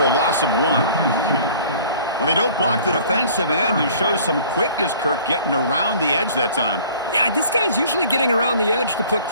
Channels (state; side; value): inverted; both; correlation -0.50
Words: a loss of 1. Well, they don't block the defensive end, who shows some quickness, Kirk, getting around the edge that time. Yeah, this guy's usually getting around the edge to put